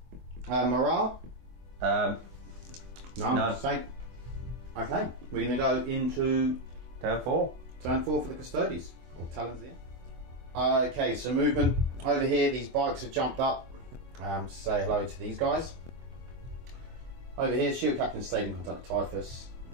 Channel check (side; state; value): left; late; 24 ms